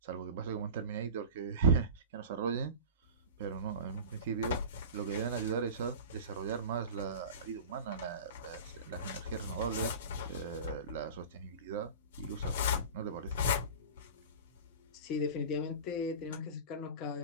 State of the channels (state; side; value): inverted; both; correlation -0.33